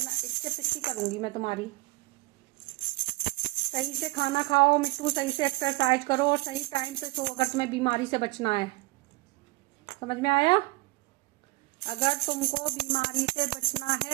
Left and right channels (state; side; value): quieter; left; 22.5 dB